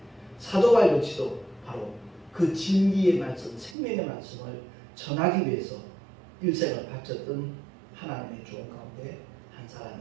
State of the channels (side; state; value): left; drops out; at 3.8 s